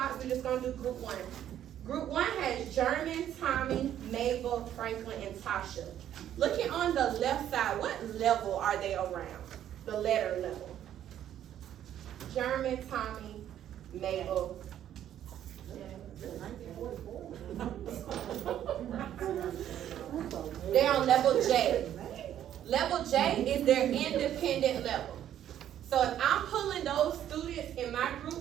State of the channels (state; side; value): quieter; left; 10.9 dB